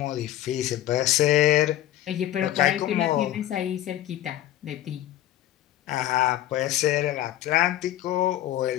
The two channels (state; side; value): quieter; right; 13.3 dB